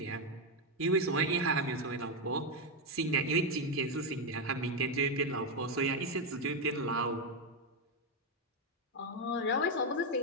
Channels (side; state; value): both; normal; correlation 0.05